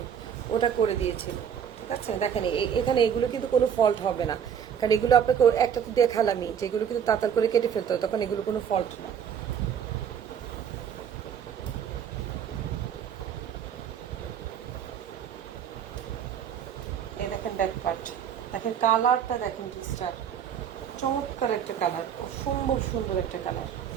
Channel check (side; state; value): left; quieter; 8.3 dB